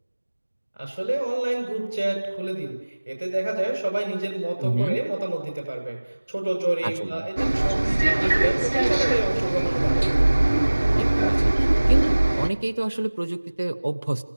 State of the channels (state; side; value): inverted; both; correlation -1.00